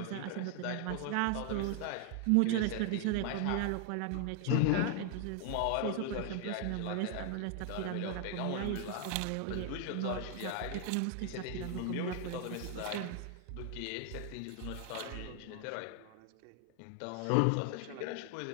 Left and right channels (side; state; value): both; different; correlation 0.00